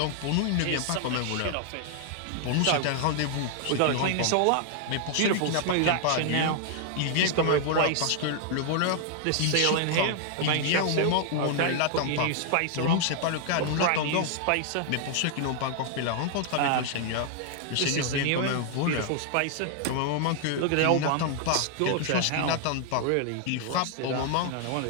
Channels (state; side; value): different; both; correlation 0.00